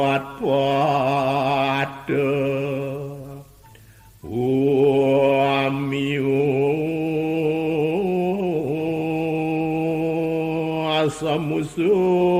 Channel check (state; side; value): identical; both; correlation 1.00